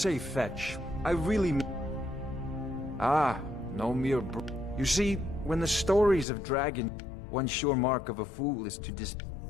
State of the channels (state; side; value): drops out; right; at 6.2 s